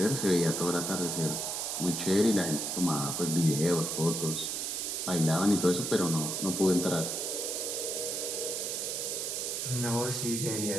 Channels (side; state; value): right; noise; hiss, 2 dB below the sound